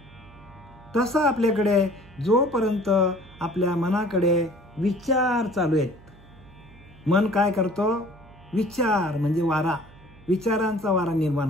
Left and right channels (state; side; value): noise; right; hum, 23 dB below the sound